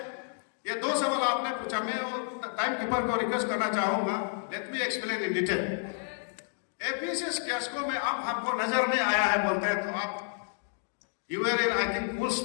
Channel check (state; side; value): silent; right; digital silence